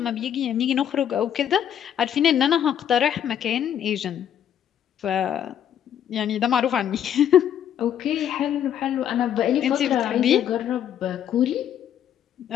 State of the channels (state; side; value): quieter; right; 9.7 dB